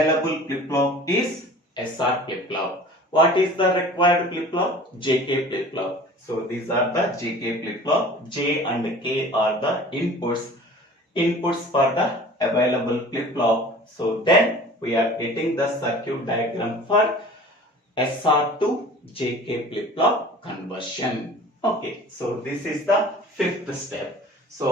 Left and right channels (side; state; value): both; normal; correlation 0.44